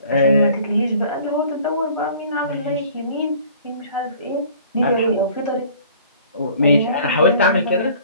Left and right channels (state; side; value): inverted; both; correlation -0.51